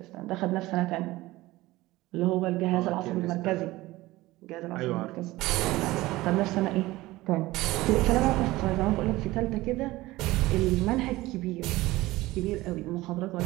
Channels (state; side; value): quieter; left; 18.6 dB